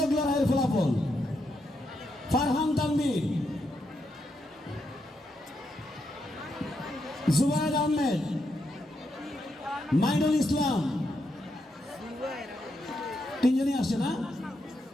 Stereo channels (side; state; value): both; normal; correlation 0.82